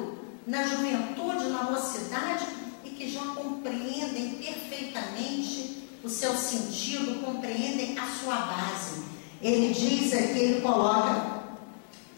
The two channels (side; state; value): right; silent; digital silence